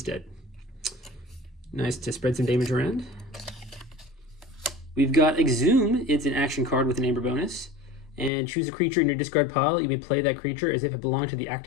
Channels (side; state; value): right; drops out; at 8.3 s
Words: Nice to spread some damage around. We've got Exhume, it's an action card with an amber bonus. And choose a creature in your discard pile. You may play that creature as if it belonged to the